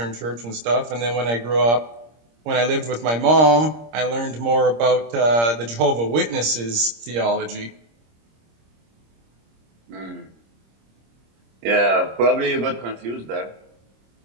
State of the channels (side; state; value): left; late; 26 ms